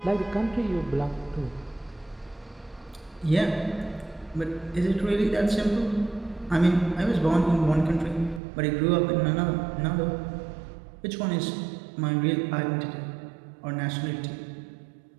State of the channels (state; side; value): drops out; left; at 8.4 s